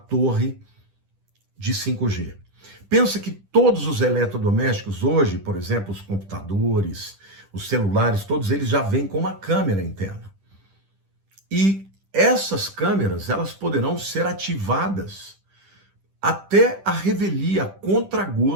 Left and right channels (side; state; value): left; late; 10 ms